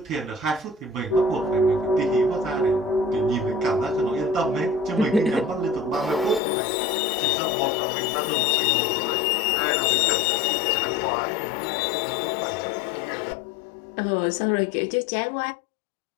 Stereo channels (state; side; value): drops out; right; at 6.4 s